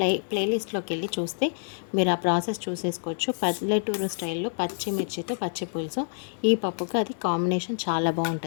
ప్లేలిస్ట్లోకి వెళ్ళి చూస్తే మీరు ఆ ప్రాసెస్ చూసేసుకోవచ్చు. పల్లెటూరు స్టైల్లో పచ్చిమిర్చితో పచ్చిపులుసు, ఈ పప్పుకి అది కాంబినేషన్ చాలా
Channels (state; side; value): silent; right; digital silence